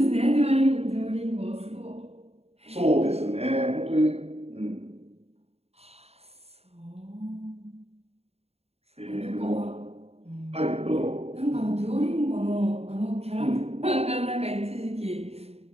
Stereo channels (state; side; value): late; left; 0.30 ms